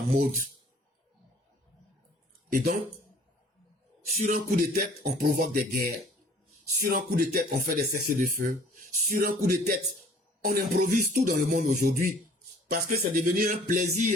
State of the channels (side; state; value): both; normal; correlation 0.54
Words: mode. Et donc, sur un coup de tête, on provoque des guerres. Sur un coup de tête, on fait des cessez-le-feu. Sur un coup de tête, on improvise tout dans le monde aujourd'hui. Parce que c'est devenu un